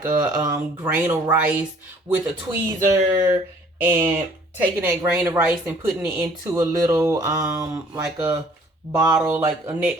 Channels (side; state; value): both; normal; correlation 0.56